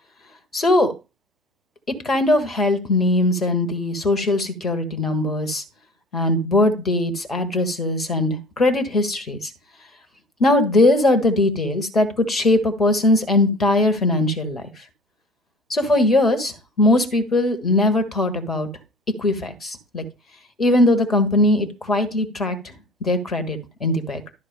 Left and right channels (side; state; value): both; normal; correlation 0.46